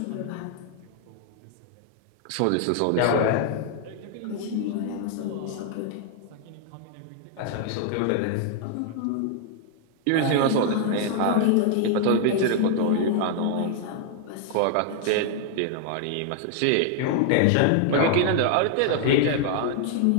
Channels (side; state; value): both; different; correlation 0.00